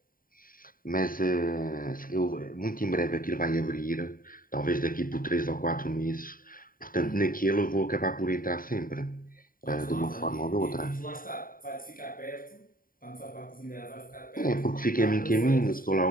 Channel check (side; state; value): right; late; 0.41 ms